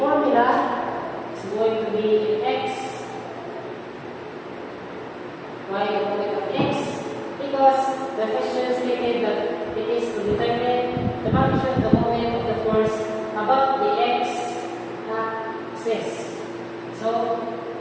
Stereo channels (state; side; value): identical; both; correlation 1.00